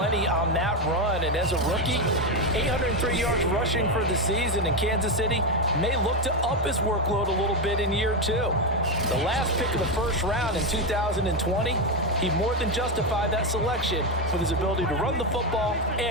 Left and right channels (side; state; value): both; normal; correlation 0.09